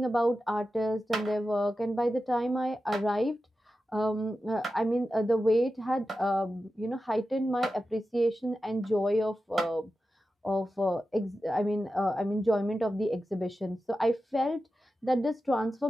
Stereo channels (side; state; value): both; normal; correlation 0.92